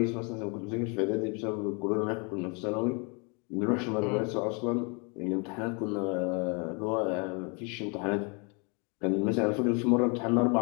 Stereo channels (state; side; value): quieter; right; 33.2 dB